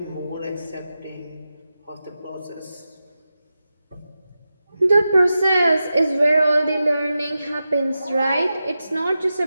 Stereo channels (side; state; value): both; inverted; correlation -0.92